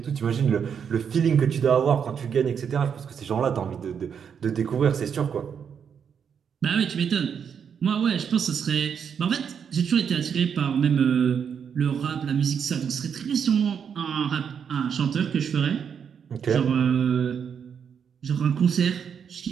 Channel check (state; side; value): quieter; left; 7.3 dB